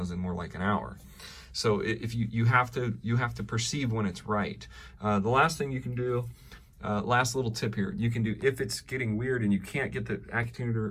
in more like an hour. So if you have to perceive when it's right. The last thing you can do, last little tip here, you can do, if it's getting weird and you can't get the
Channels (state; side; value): identical; both; correlation 1.00